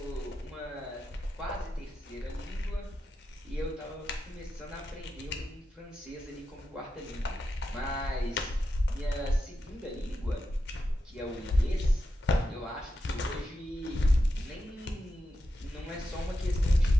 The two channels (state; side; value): normal; both; correlation 0.88